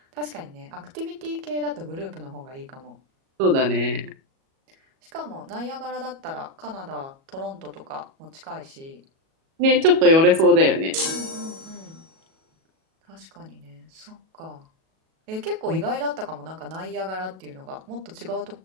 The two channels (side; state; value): left; late; 37 ms